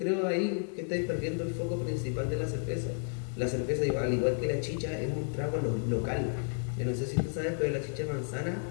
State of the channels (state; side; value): silent; right; 56 dB below the other